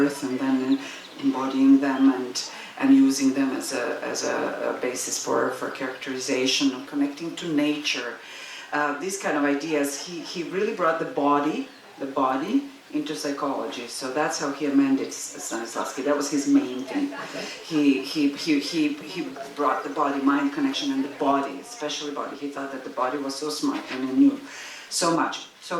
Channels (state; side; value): identical; both; correlation 1.00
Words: and then embodying them and using them as a basis for characterization and connecting to nature. These kind of ideas, he really brought the body into psychology. So that's how he amended Stanislavski. That was his main thing. He brought the body-mind connection and the body, especially body. He thought that the body was so smart and he knew so much.